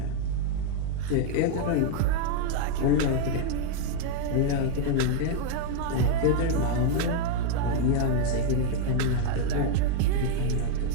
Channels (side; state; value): both; different; correlation 0.01